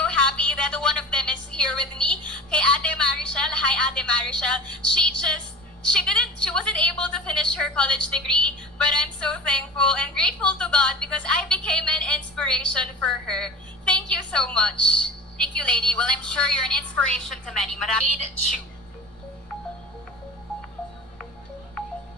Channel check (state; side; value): normal; both; correlation 0.36